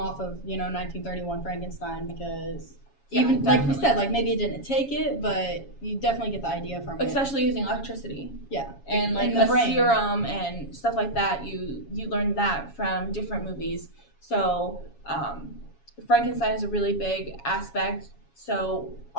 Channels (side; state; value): right; late; 7.2 ms